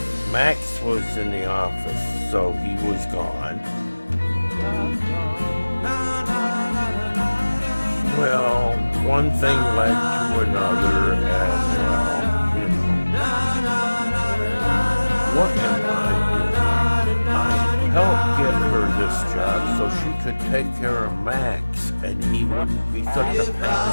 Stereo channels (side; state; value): both; inverted; correlation -1.00